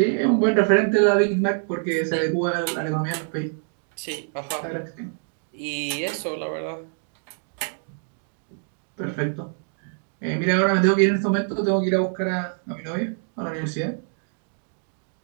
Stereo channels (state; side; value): silent; left; 62 dB below the other